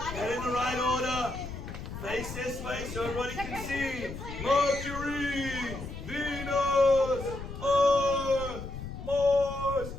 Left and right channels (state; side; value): noise; left; rumble, 9 dB below the sound